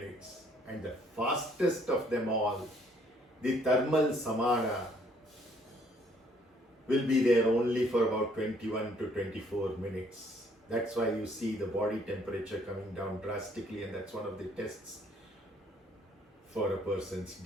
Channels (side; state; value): both; normal; correlation 0.64